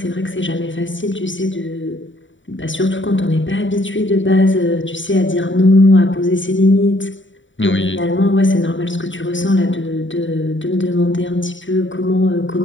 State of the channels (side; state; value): right; late; 0.55 ms